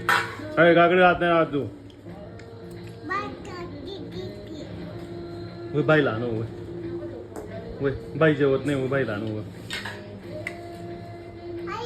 अरे काकडी राहत नाही राहत तू बाईला आणू वय बाई जेवत नाही बाईला आणू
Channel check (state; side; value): identical; both; correlation 1.00